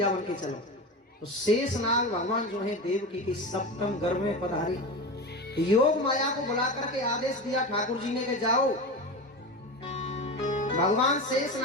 बन के चलो। तो शेषनाग भगवान जो है देवकी के 7वें गर्भ में पधारे। योग माया को बुला करके आदेश दिया ठाकुर जी ने कि जाओ। भगवान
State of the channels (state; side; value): normal; both; correlation 0.25